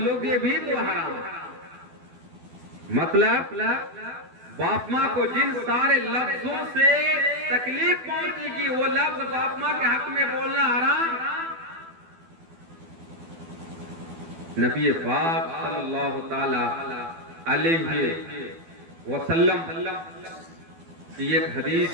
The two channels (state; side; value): late; left; 12 ms